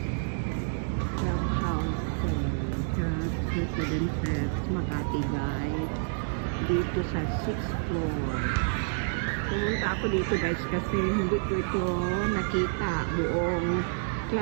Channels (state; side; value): silent; left; 59 dB below the other